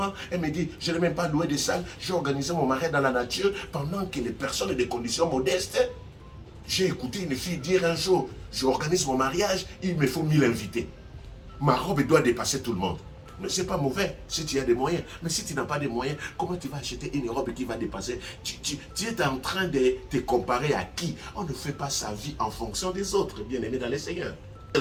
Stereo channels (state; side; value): identical; both; correlation 1.00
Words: Elle me dit, je n'ai même pas loué de salle. J'ai organisé mon mariage dans la nature pendant que les personnes ont des conditions modestes. J'ai écouté une fille dire un jour, j'organise mon mariage, il me faut 1000 invités. Ma robe doit dépasser tout le monde. Mais ce n'est pas mauvais si tu as des moyens. Mais si tu n'as pas de moyens, comment tu vas acheter une robe qui va dépasser? Tu es en train de te comparer à qui? On ne fait pas sa vie en fonction des autres, bien-aimés dans le Seigneur.